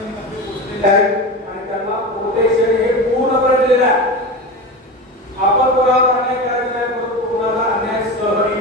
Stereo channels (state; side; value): normal; both; correlation 0.25